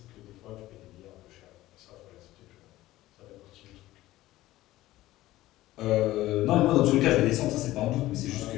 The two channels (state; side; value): quieter; right; 16.3 dB